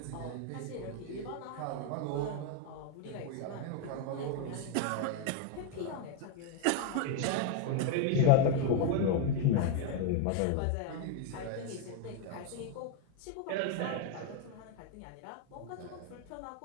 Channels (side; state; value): both; different; correlation 0.01